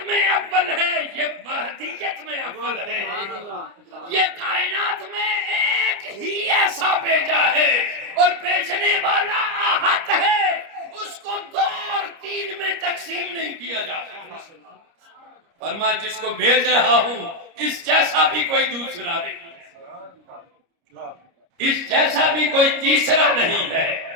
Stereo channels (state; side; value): late; left; 30 ms